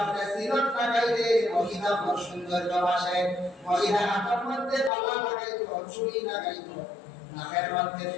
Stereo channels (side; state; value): right; drops out; at 4.9 s